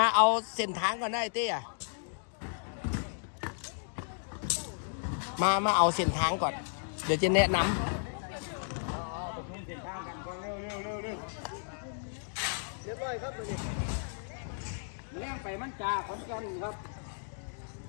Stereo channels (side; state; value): right; silent; digital silence